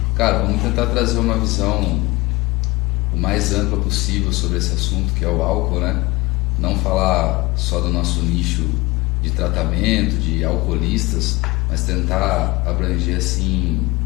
Cara, vamos tentar trazer uma visão o mais ampla possível sobre esse assunto que é o álcool, né? Não falar só do nosso nicho de tratamento, de alcoolistas, mas tentar abranger assim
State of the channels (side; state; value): right; quieter; 22.5 dB